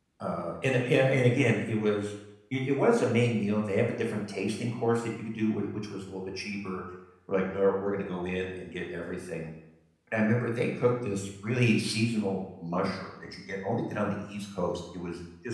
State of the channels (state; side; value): identical; both; correlation 1.00